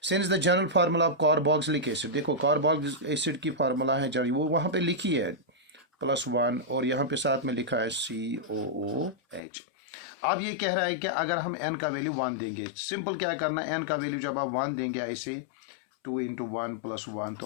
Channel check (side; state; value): right; drops out; at 9.4 s